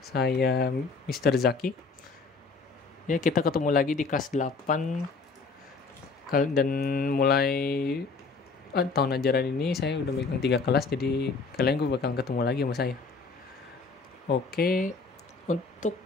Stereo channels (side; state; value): right; quieter; 4.5 dB